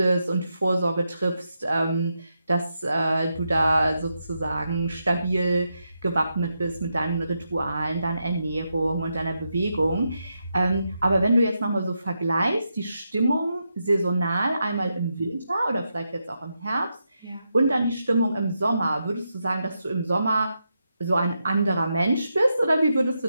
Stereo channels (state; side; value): inverted; both; correlation -0.85